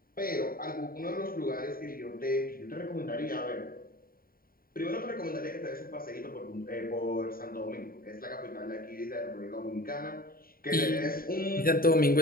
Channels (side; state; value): right; late; 0.43 ms